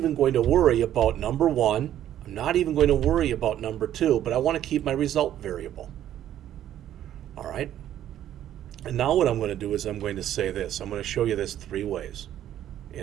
going to worry about number 1. I'm not even going to worry about number 2, but I want to keep my result variable. All right. And now what I'm going to do is I'm going to say this. I'm going to show you this 3 ways.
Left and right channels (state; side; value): quieter; left; 11.5 dB